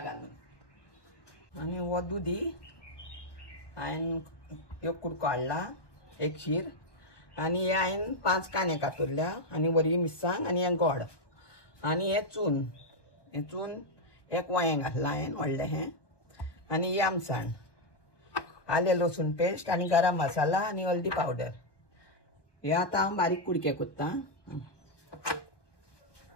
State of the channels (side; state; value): right; late; 1.1 ms